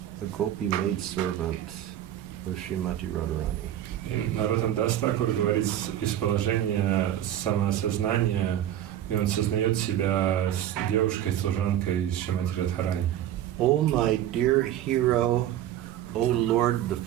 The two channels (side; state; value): left; quieter; 11.7 dB